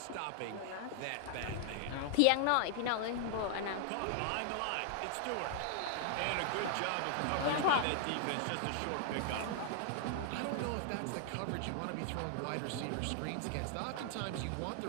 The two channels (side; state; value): both; different; correlation 0.00